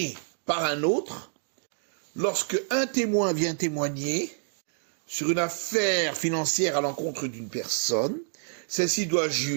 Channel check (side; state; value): left; silent; digital silence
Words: par un autre, lorsque un témoin vient témoigner sur une affaire financière à l'encontre d'une personne, celle-ci doit